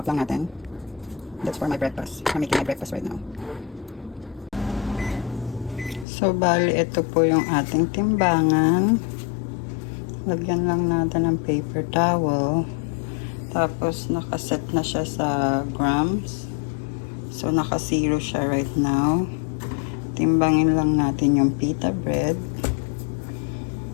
lang natin. That's for my breakfast. I'm making my breakfast right now. So, bali, ito po yung ating timbangan. Lagyan lang natin ng paper towel. Tapos, nakaset na siya sa grams. So, naka-zero siya right now. Timbangin lang natin yung pita bread.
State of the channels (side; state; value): right; drops out; at 6.1 s